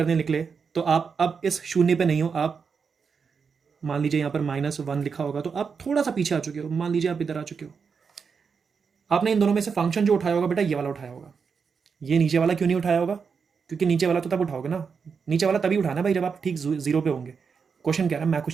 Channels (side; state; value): left; quieter; 5.8 dB